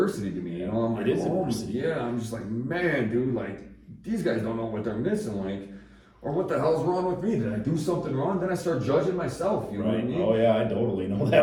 to me, you know? I'm like, It is oh, adversity. yeah, I'm just like, man, dude, like, these guys don't know what they're missing, like, or what the hell's wrong with me? Did I do something wrong? Then I start judging myself, you know what I Right. mean? Oh yeah, I totally know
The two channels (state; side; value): identical; both; correlation 1.00